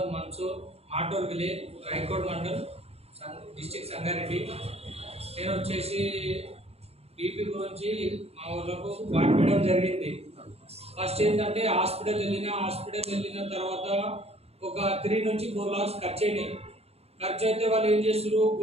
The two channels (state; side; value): late; left; 0.30 ms